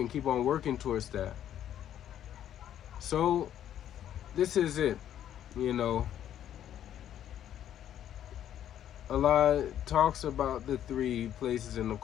keep on working towards that. So, this is it. Allah talks about the three places in the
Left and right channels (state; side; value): quieter; right; 10.7 dB